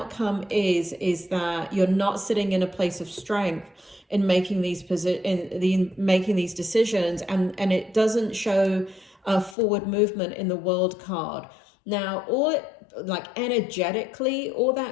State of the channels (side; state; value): right; drops out; at 9.6 s